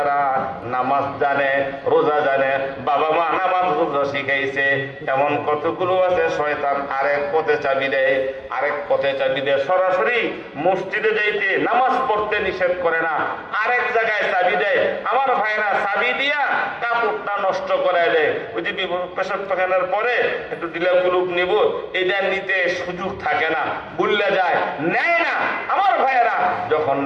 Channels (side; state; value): both; identical; correlation 1.00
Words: নামাজ জানে, রোজা জানে, বাবা মা নামাজ রোজা শিখাইছে, এমন কতগুলো আছে শয়তান আরেক পথে চাবি দেয়, আরেক পথে চাবি দেয়। সরাসরি মসজিদে যাইতে, নামাজ পড়তে নিষেধ করে না, আরেক জায়গায় চাবি দেয়। আমার ভাইরা চাবি দিয়া কাপড়টা নষ্ট করে দেয়। ওই যে পেশাব পাখানোর পরে একটু ডিলা কুলুপ নিব, এটা নিতে সুযোগ থাকে না, ভুললে যায়, নেয় না। আমার ভাইয়েরা, যখন